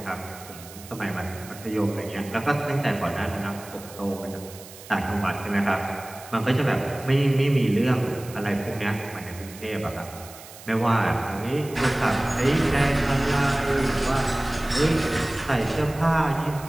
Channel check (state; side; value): noise; right; hiss, 17 dB below the sound